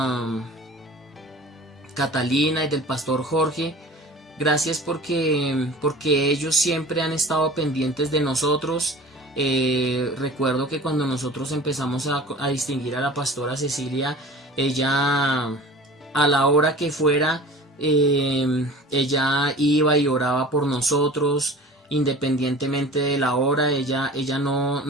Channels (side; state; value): both; normal; correlation 0.40